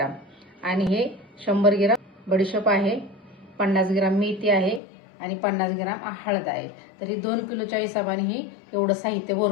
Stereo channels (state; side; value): drops out; right; at 4.8 s